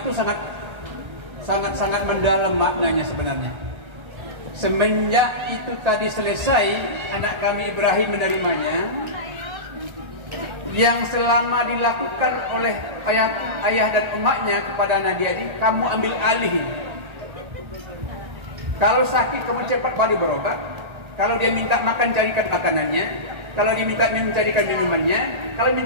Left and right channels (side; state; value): left; late; 1.3 ms